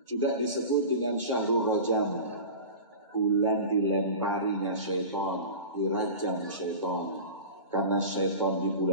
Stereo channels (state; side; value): inverted; both; correlation -0.33